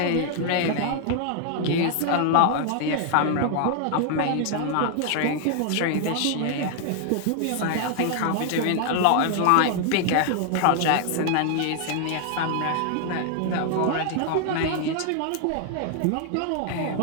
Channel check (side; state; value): both; different; correlation 0.00